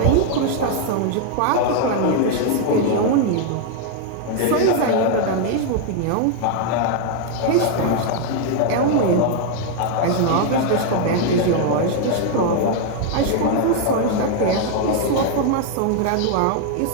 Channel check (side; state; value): both; different; correlation 0.00